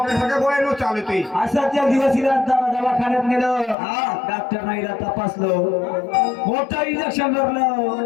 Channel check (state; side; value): drops out; right; at 3.8 s